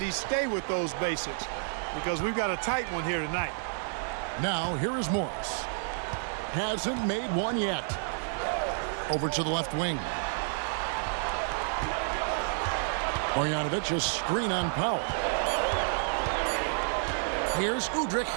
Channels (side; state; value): left; silent; 58 dB below the other